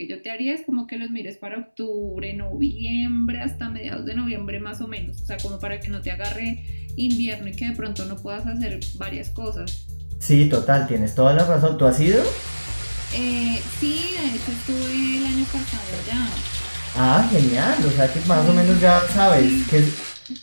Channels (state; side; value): inverted; both; correlation -1.00